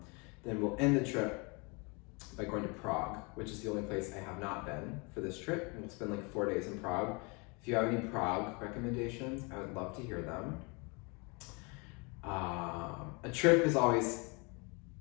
then we'll end the trip by going to Prague, which is the only place I have not been for this trip. And we'll spend like 4 days in Prague. If you have any Prague recommendations, I would love to hear them. A trip is always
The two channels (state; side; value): quieter; right; 30.4 dB